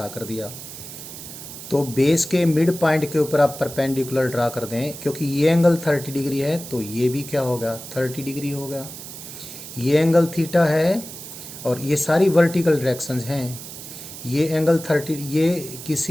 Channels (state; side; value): noise; right; hiss, 12 dB below the sound